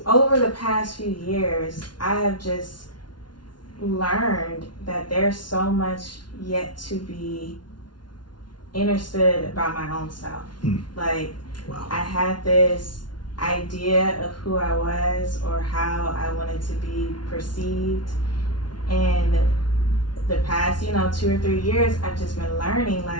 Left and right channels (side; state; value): right; late; 0.70 ms